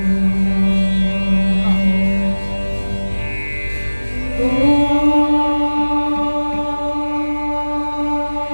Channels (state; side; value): inverted; both; correlation -1.00